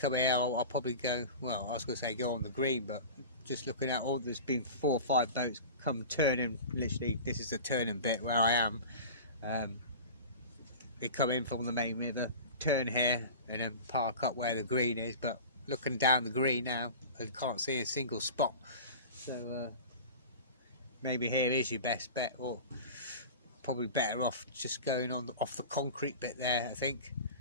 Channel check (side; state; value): both; inverted; correlation -0.34